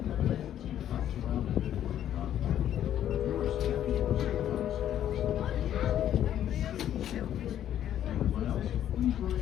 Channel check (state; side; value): quieter; right; 10.9 dB